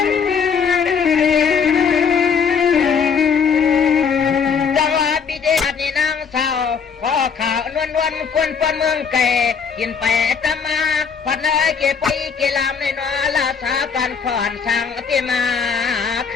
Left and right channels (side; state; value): right; quieter; 6.3 dB